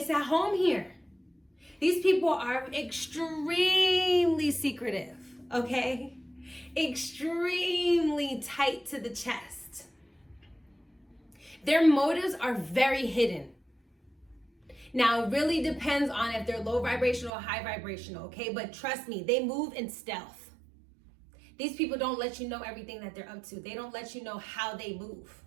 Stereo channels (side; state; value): left; drops out; at 17.3 s